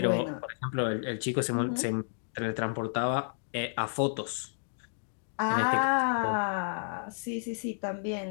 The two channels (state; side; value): silent; right; digital silence